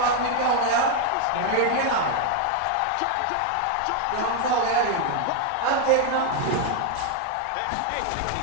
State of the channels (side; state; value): both; different; correlation 0.01